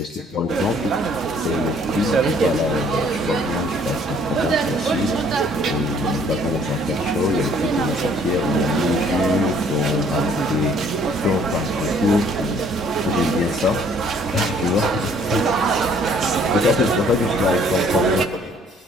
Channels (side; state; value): both; normal; correlation 0.60